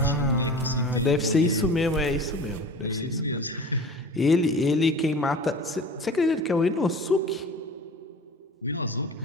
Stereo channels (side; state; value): both; normal; correlation 0.38